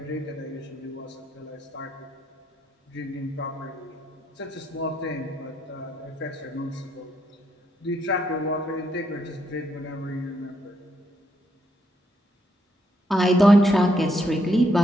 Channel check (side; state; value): both; normal; correlation 0.75